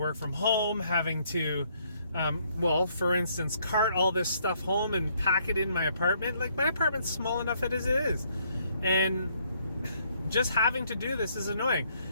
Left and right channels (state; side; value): inverted; both; correlation -0.68